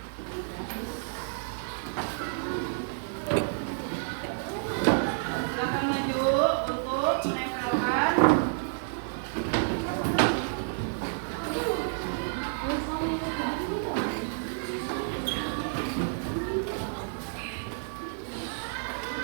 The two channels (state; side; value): silent; left; digital silence